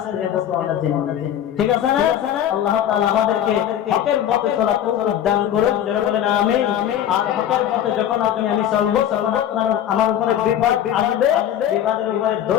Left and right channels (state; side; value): quieter; right; 10.5 dB